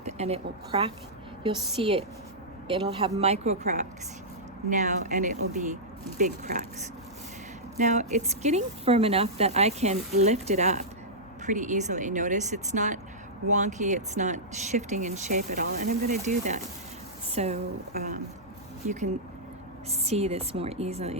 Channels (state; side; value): normal; both; correlation -0.12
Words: and it will crack. You'll see it. It'll have micro cracks now and it will be big cracks. Now it's getting firm enough that I can lift it up pretty easily. Notice it's not wonky, it's not shifting in shape at all, and I'm going to do that so you can see this more